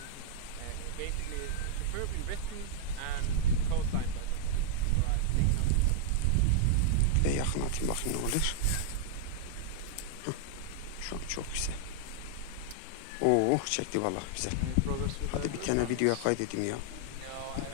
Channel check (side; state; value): both; different; correlation -0.01